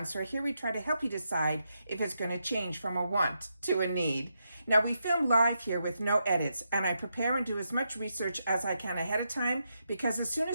where here we try to help you decide if it's going to change from a want to a need. Now we film live here with no edits, and I prepare and do as much research as I can ahead of time, because as soon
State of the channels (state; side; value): inverted; both; correlation -0.83